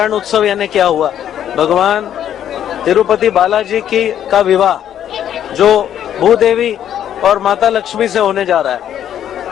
उत्सव यानी क्या हुआ? भगवान तिरुपति बालाजी का विवाह जो भूदेवी और माता लक्ष्मी से होने जा रहा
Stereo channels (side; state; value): right; quieter; 10.3 dB